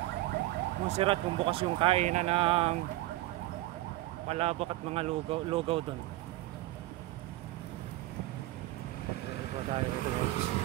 Montserrat, kung bukas yung kainan ng palabok at mga lugaw doon. Dito tayo dito guys.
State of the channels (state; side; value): quieter; left; 17.6 dB